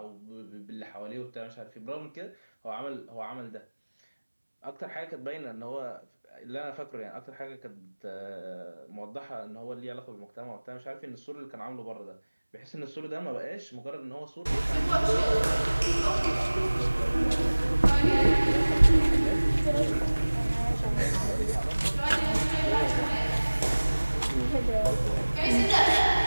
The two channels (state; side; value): inverted; both; correlation -1.00